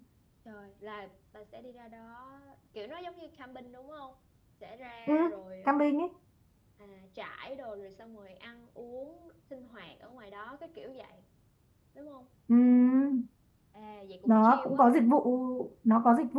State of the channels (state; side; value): identical; both; correlation 1.00